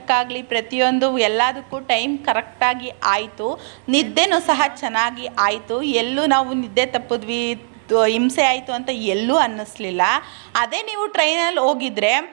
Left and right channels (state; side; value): silent; left; digital silence